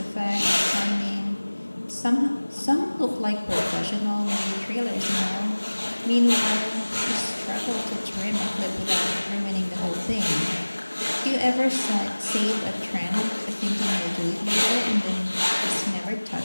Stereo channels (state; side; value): inverted; both; correlation -1.00